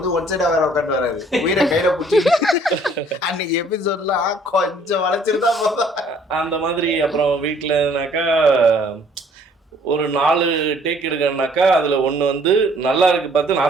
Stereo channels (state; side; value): normal; both; correlation 0.59